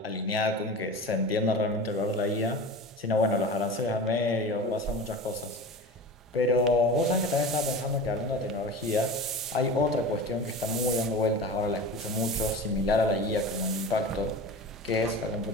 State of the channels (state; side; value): normal; both; correlation 0.32